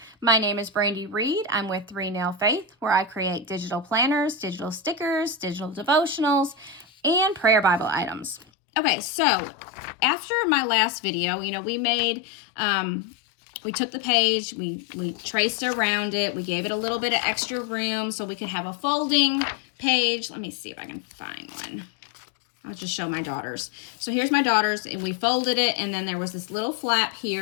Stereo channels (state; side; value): drops out; right; at 8.5 s